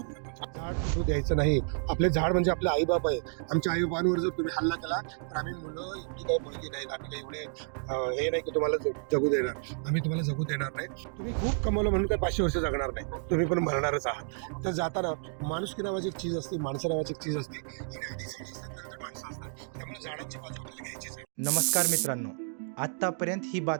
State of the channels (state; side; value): silent; left; 56 dB below the other